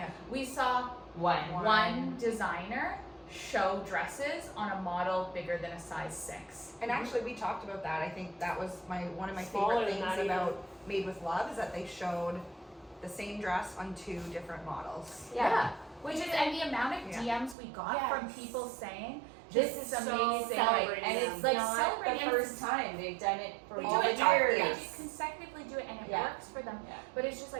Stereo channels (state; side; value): drops out; left; at 17.6 s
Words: We saw One. one designer show dresses on a model bigger than a size 6. And actually, we talked about that. I think that was one of my Smaller favorite than things that about Made with Love is that they showed the same dress on 2 different models. Yeah. Which is, and the amount of Yeah. DMs we got Yes. from people saying, this is So amazing. celebrating and them. it's like Not celebrating the the first first time they've done it for They all do the it time. They Yes. just consecutively do it, and it Yeah. works for them. Yeah. But it's just